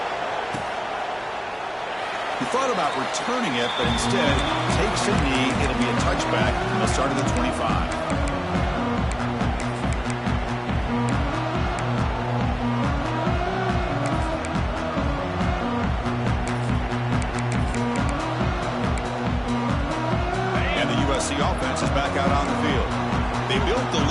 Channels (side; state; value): both; identical; correlation 1.00